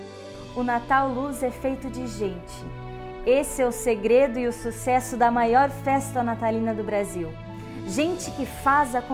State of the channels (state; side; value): identical; both; correlation 1.00